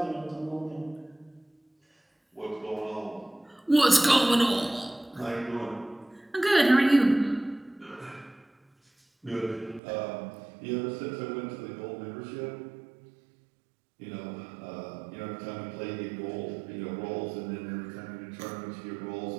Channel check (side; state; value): left; drops out; at 9.8 s